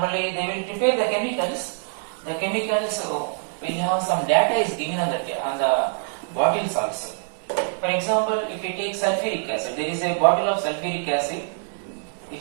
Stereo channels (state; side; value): silent; left; digital silence